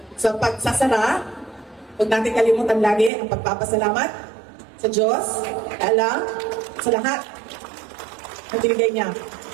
sa pagsasara, huwag natin kalimutan lagi ang pagpapasalamat sa Diyos, Allah, sa lahat na binigay niya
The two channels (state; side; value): drops out; left; at 3.1 s